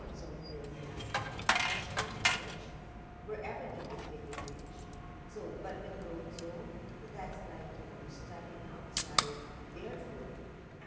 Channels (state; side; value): identical; both; correlation 1.00